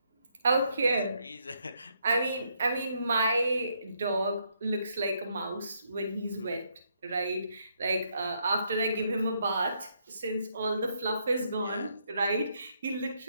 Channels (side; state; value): both; inverted; correlation -0.75